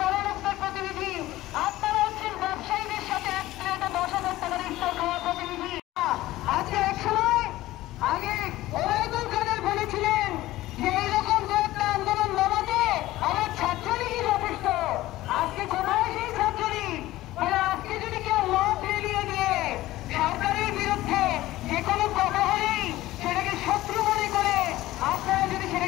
বড় লোকদের প্রতিনিধি, আপনারা হচ্ছেন ব্যবসায়ীদের সাথে এক প্লেটে 10,000 টাকার ইফতার খাওয়ার প্রতিনিধি। আজকে এক সময় আগে ওবায়দুল কাদের বলেছিলেন যে এইরকম দু একটা আন্দোলন নামাতে আমার ছাত্রলীগই যথেষ্ট। আজকে কোথায় সেই ছাত্রলীগ? আজকে যদি কেউ মত রেলিয়ে দিয়ে সরকারের বিরুদ্ধে যে কোনো কথা হলেই সেটাকে শত্রু মনে করে আপনারা যদি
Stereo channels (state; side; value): quieter; right; 16.5 dB